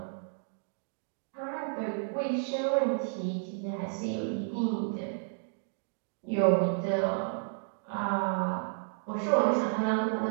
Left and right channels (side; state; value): left; silent; digital silence